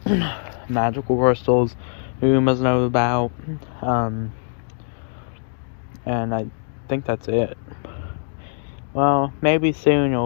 magical crystals Umas know about, and I think that's it. Well, maybe soon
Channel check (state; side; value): silent; right; digital silence